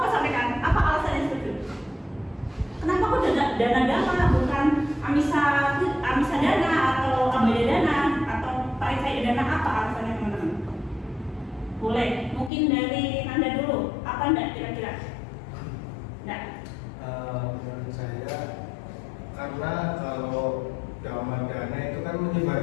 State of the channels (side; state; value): right; drops out; at 12.5 s